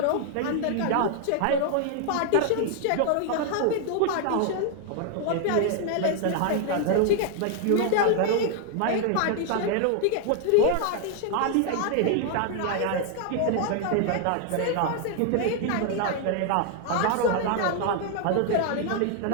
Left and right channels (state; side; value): different; both; correlation 0.00